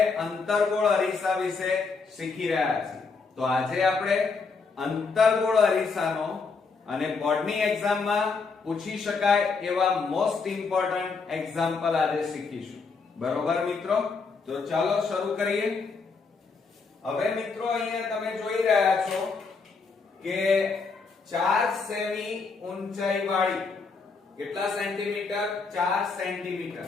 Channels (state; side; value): quieter; right; 4.7 dB